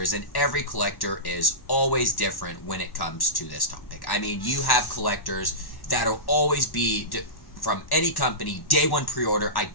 and every collector is always different when it comes to this topic. I mean, you have collectors that'll always be from any company, day one pre-order, I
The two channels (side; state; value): right; late; 1.1 ms